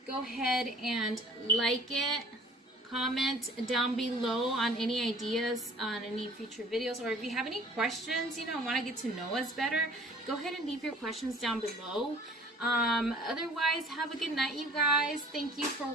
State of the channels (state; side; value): normal; both; correlation 0.51